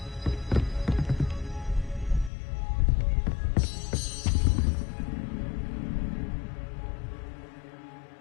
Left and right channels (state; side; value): drops out; right; at 2.3 s